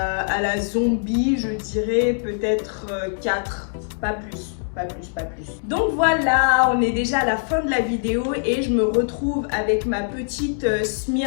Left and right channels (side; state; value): right; silent; digital silence